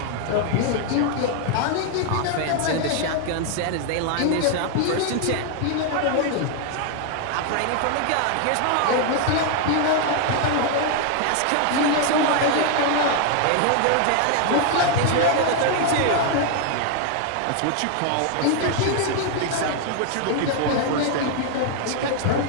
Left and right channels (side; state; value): both; different; correlation 0.00